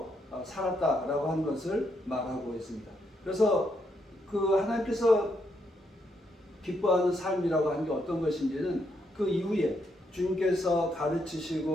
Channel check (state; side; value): normal; both; correlation 0.77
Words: 살았다라고 하는 것을 말하고 있습니다. 그래서 그 하나님께서 기뻐하는 삶이라고 하는 게 어떤 것인지는 그 이후에 주님께서